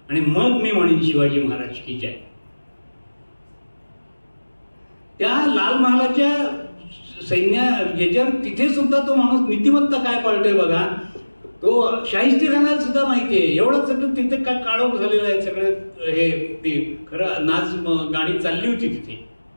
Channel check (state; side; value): inverted; both; correlation -1.00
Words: आणि मग मी म्हणेन शिवाजी महाराज की जय. त्या लाल महालाच्या सैन्य याच्यावर तिथे सुद्धा तो माणूस नीतिमत्ता काय पाळतोय बघा. तो शाहिस्तेखानाला सुद्धा माहिती आहे. एवढं सगळं तिथे काय काळोख झालेलं आहे सगळं. हे ते खरं नाच गाणी चालली होती तिथे.